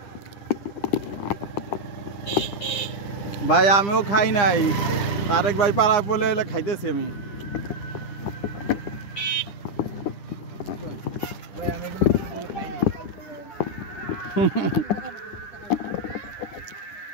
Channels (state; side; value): late; right; 10 ms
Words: ভাই আমিও খাই নাই, তারেক ভাই পাড়ায় পড়লে এলে খাইতেছি আমি। ভাই আমি এগুলো খাইনি।